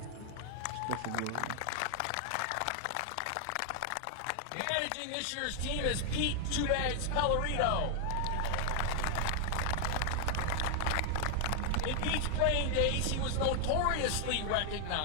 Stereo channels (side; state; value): both; different; correlation 0.00